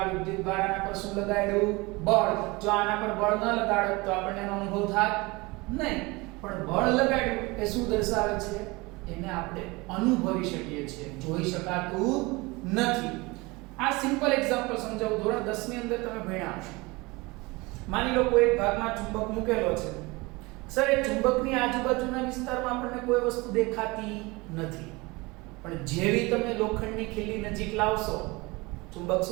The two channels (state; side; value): quieter; left; 24.0 dB